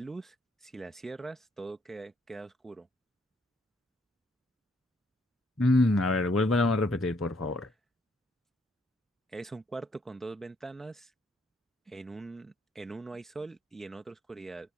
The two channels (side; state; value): both; normal; correlation 0.70